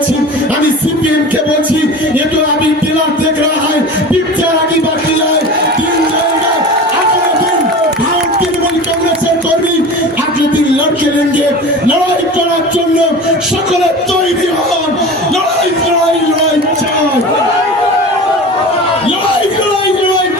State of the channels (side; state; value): both; normal; correlation 0.34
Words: আমি সিপিএম কে বলছি, ये तो अभी टेलर देख रहा है, पिक्चर आगे बाकी है, दिन जाएगा, अगले दिन भारत तृणमूल कांग्रेसের কর্মী अगले दिन लड़के लेंगे, लड़ाई করার জন্য সকলে তৈরি হন, লড়াই লড়াই লড়াই চাই।